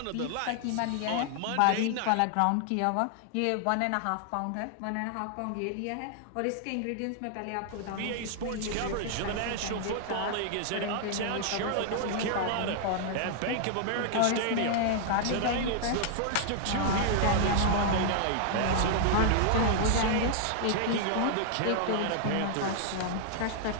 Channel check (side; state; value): both; different; correlation -0.01